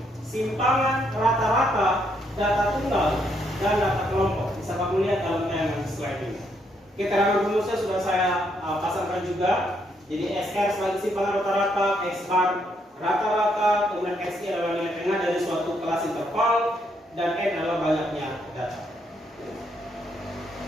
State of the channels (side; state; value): both; normal; correlation 0.74